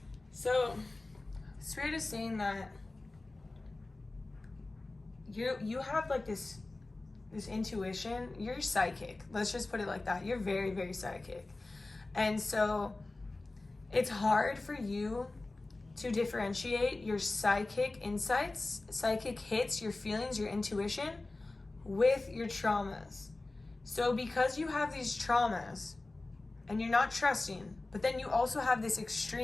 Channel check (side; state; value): right; quieter; 3.1 dB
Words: So Spirit is saying that you have like this intuition. You're psychic. Let's just put it like that. You're very, very psychic. And so it's hard for you to differentiate your psychic insights, psychic hits, your feelings, your intuition with your traumas. So because you have these traumas and you're not trusting, but then you also have this